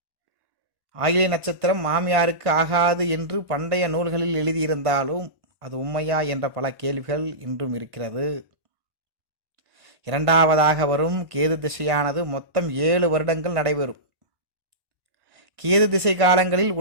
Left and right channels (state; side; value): late; left; 1.5 ms